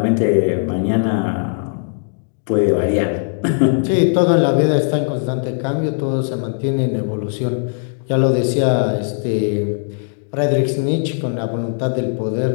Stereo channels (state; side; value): silent; right; digital silence